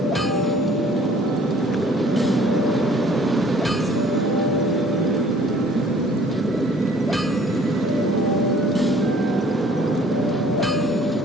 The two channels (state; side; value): normal; both; correlation 0.55